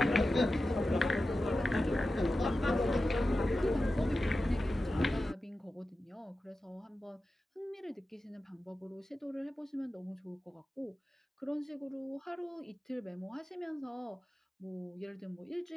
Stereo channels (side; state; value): both; normal; correlation 0.93